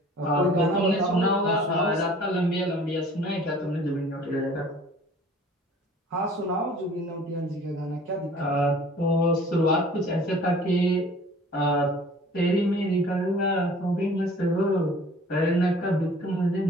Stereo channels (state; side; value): normal; both; correlation 0.49